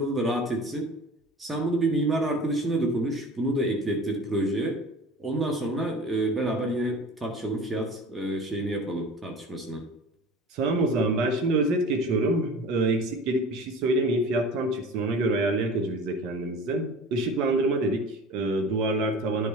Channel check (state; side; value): normal; both; correlation 0.39